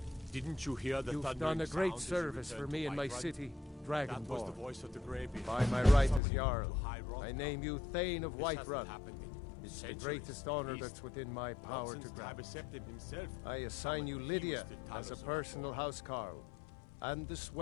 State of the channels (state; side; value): drops out; right; at 6.2 s